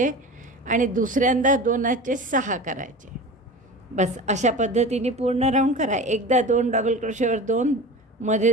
आणि दुसऱ्यांदा 2चे 6 करायचे. बस अशा पद्धतीने पूर्ण राऊंड करा. एकदा 2 डबल क्रोशेवर 2, मध्ये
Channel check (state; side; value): normal; both; correlation 0.34